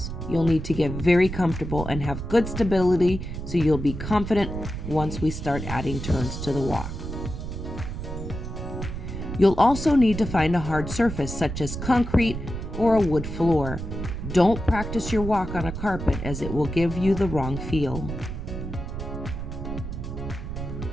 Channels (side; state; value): right; noise; rumble, 7 dB below the sound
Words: You'll need to get very comfortable and have good stability so you'll be confident once we start adding turns to the walk. You'll also need to find a hard surface such as concrete or a wood floor. Don't practice your walk on a carpet as it will give you the wrong feel.